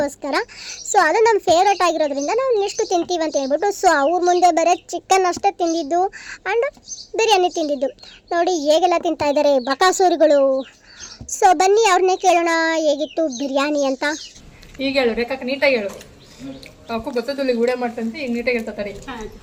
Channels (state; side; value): identical; both; correlation 1.00